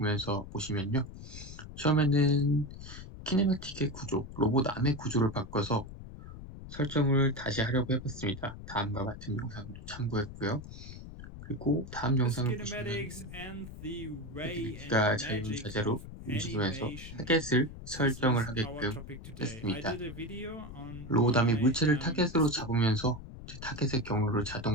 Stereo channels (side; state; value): left; noise; rumble, 13 dB below the sound